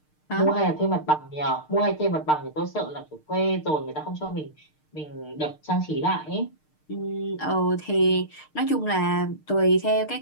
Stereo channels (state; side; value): late; right; 6.6 ms